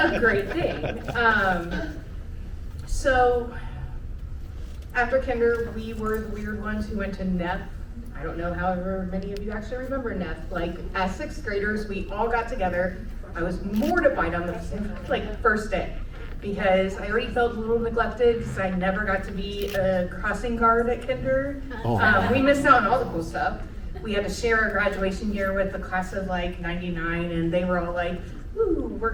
great thing. So after kinder, we were the weird ones who went to NEP. I don't know however many of you actually remember NEP. Like, as 6th graders, we all got together. I was mortified on the first day, because I already felt a little neglected because I never got to be a crossing guard at kinder. We missed out on all the cool stuff. We had to share our graduation year with the class of like 99, and they were all like, ooh, we're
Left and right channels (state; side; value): identical; both; correlation 1.00